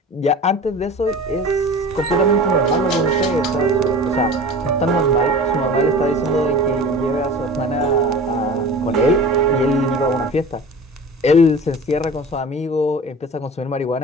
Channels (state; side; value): normal; both; correlation 0.38